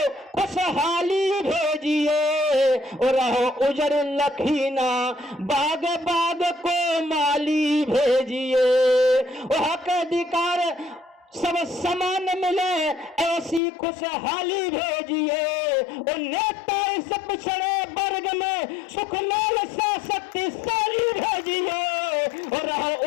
खुशहाली भेजिए, और रहो उजर लखीना बाग बाग को माली भेजिए, और हक अधिकार सब समान मिले ऐसी खुशहाली भेजिए, और नेता इस पिछड़े वर्ग में सुख लाल सा शक्तिशाली भेजिए, और रहो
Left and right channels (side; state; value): right; drops out; at 13.6 s